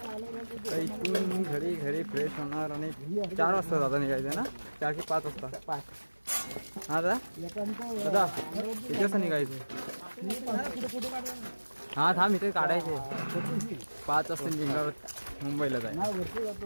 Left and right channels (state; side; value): inverted; both; correlation -1.00